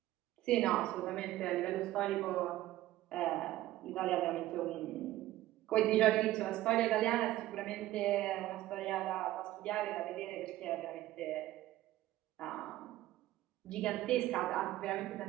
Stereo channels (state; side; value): quieter; left; 15.3 dB